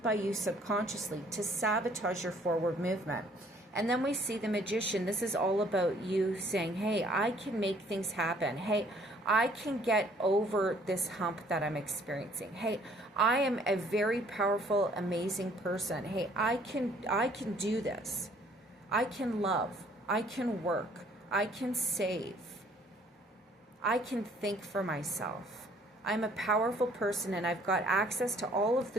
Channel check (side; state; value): both; normal; correlation 0.60